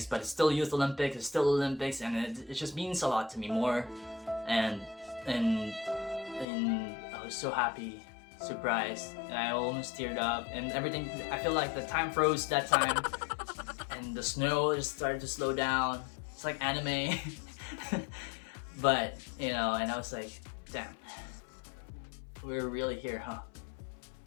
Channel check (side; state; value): right; drops out; at 6.5 s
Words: but it's still Youth Olympics. It's still Olympics, and it just means a lot to me more. And I was so happy, surprised, and I almost teared up, and everything. I feel like the time froze that time, and the snow just started to slow down. It's like anime. But and I was like, damn, we're really here, huh?